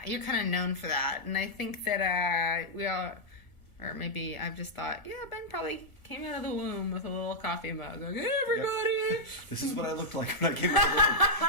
you're kind of known for that, and I think that we all, or maybe I've just thought, yeah, Ben probably came out of the womb with a little coffee mug. Like, hey, everybody! Yep. This is what I looked like when I came out of the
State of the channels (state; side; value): late; right; 1.5 ms